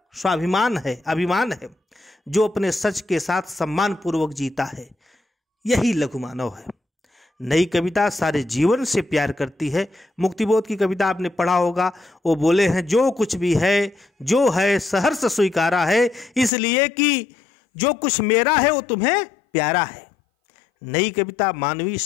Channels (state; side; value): drops out; right; at 16.5 s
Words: स्वाभिमान है, अभिमान है, जो अपने सच के साथ सम्मान पूर्वक जीता है। यही लघु मानव है। नई कविता सारे जीवन से प्यार करती है। मुक्तिबोध की कविता आपने पढ़ा होगा, वो बोले हैं, जो कुछ भी है जो है सहर्ष स्वीकारा है, इसलिए कि जो कुछ मेरा है वो तुम्हें प्यारा है। नई कविता मानवीय